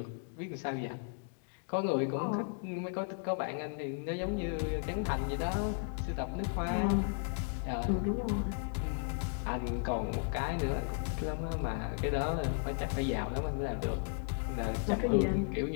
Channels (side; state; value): right; silent; 55 dB below the other